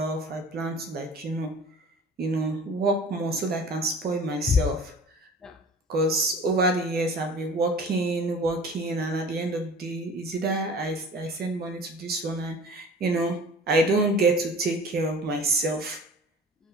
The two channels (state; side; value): normal; both; correlation 0.43